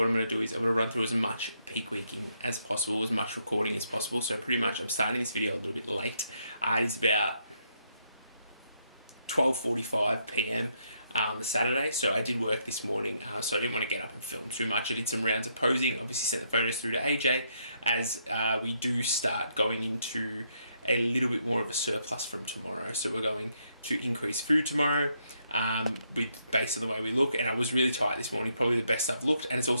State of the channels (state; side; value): inverted; both; correlation -0.75